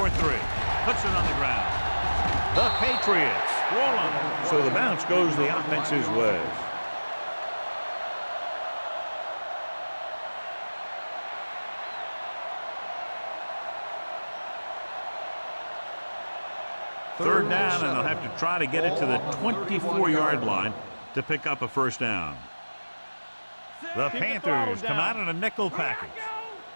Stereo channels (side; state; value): both; inverted; correlation -1.00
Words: Puts it on the ground. The Patriots roll on. So the bounce goes the offense's way. Third down, and they'll have to try to get it to the 24-yard line to pick up a first down. The Panthers come out in a nickel package.